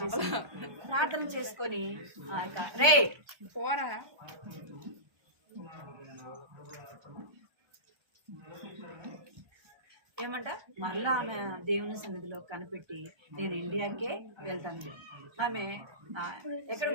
చేసుకొని రే ఏమంట మళ్ళా ఆమె దేవుని సన్నిధిలో కనిపెట్టి నేను ఇండియాకే వెళ్తాను. ఆమె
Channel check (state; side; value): late; left; 1.3 ms